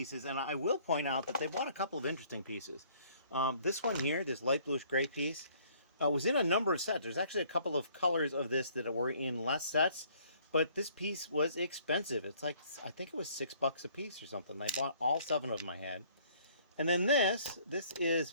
and I will point out that they bought a couple of interesting pieces. This one here, this light bluish gray piece, was in a number of sets. There's actually a couple of colors of this that were in less sets, but this piece was expensive. It's like, I think it was $6 a piece or something. I bought all 7 of them I had. And then this is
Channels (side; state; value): both; inverted; correlation -0.60